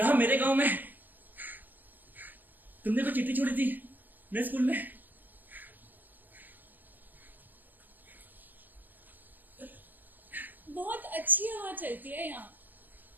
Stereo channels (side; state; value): left; late; 0.086 ms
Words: मेरे गांव में तुमने कोई चिट्ठी छोड़ी थी मेरे स्कूल में? बहुत अच्छी हवा चलती है यहाँ।